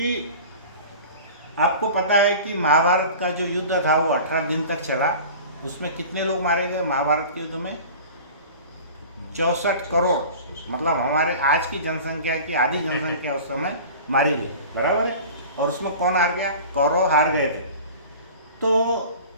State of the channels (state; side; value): inverted; both; correlation -0.39